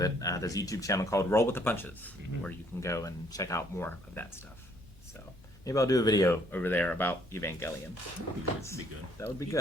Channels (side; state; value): both; normal; correlation 0.65